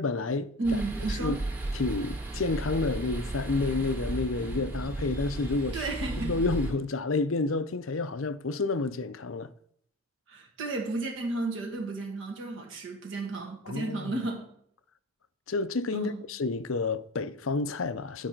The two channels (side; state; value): both; normal; correlation 0.34